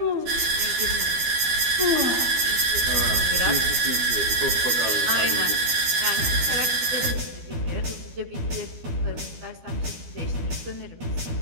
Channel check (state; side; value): late; left; 12 ms